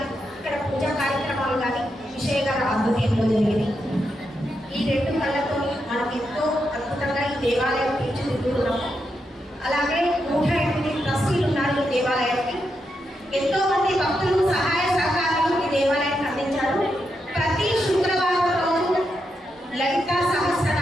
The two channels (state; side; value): normal; both; correlation 0.84